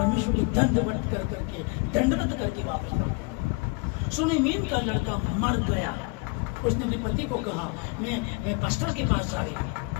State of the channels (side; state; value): right; quieter; 29.0 dB